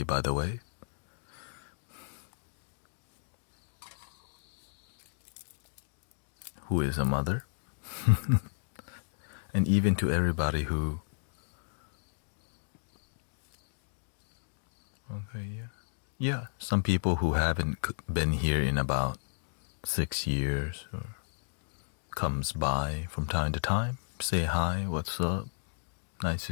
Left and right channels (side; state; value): right; silent; digital silence